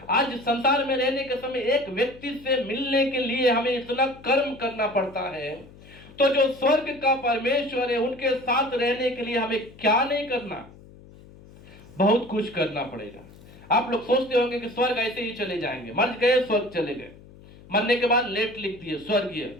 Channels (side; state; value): left; noise; hum, 21 dB below the sound